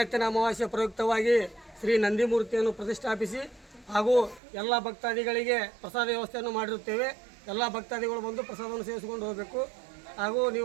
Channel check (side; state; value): left; drops out; at 4.4 s